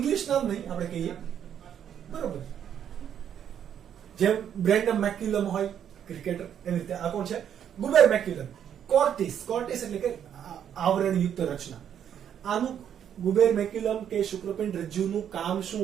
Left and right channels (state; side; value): quieter; left; 9.2 dB